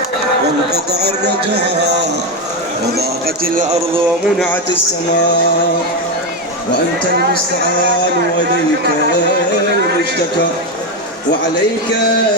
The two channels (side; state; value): both; normal; correlation 0.10